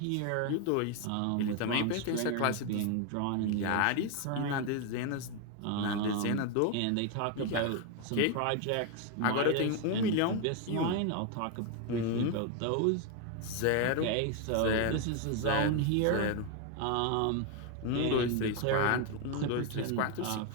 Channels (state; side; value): different; both; correlation 0.01